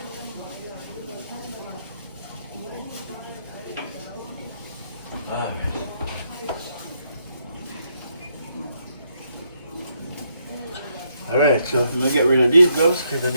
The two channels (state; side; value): inverted; both; correlation -0.77